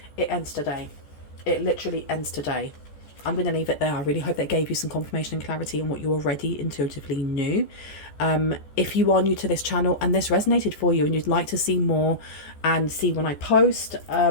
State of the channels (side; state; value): right; late; 14 ms